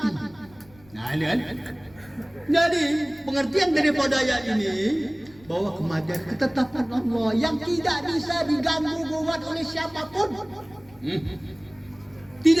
Nah, ini kan. Jadi pengertian daripada ayat ini bahwa kematian ketetapan Allah yang tidak bisa diganggu gugat oleh siapapun.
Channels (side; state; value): left; noise; rumble, 26 dB below the sound